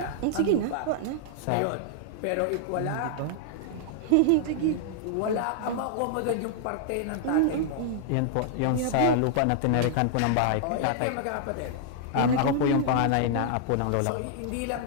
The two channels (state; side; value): different; both; correlation -0.01